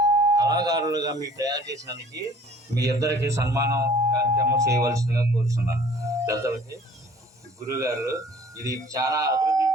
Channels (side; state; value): both; normal; correlation 0.52